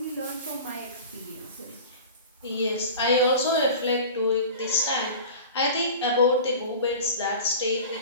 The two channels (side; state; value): both; inverted; correlation -0.36